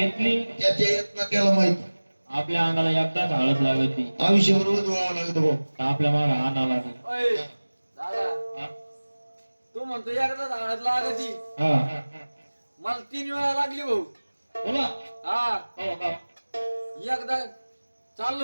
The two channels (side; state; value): both; inverted; correlation -1.00